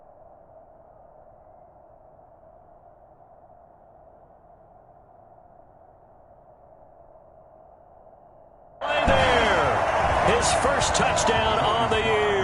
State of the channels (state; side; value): identical; both; correlation 1.00